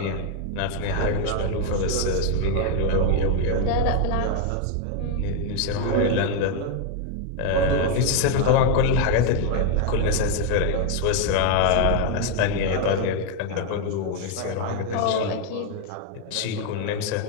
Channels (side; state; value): both; different; correlation 0.01